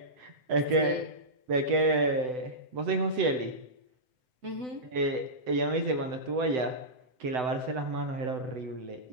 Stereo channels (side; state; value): left; late; 7.9 ms